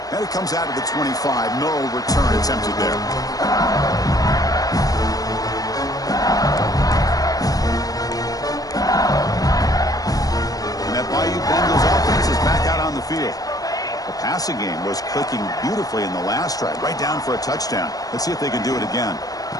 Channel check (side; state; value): right; late; 0.18 ms